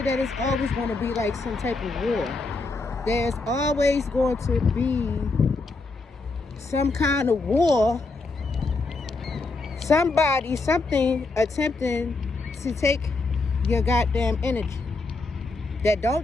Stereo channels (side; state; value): right; quieter; 3.6 dB